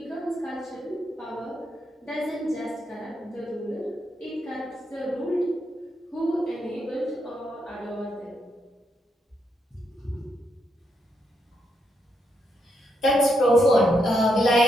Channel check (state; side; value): normal; both; correlation 0.79